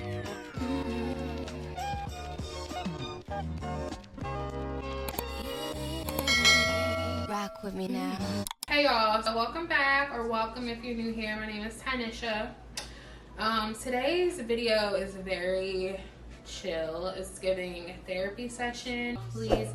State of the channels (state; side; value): identical; both; correlation 1.00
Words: Rock with me now. Hey y'all, so welcome back, or welcome if you're new here. My name is Tynisha. Today's video is very chill. It's giving therapy session. Please